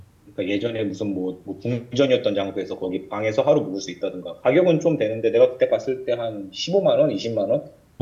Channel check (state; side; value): identical; both; correlation 1.00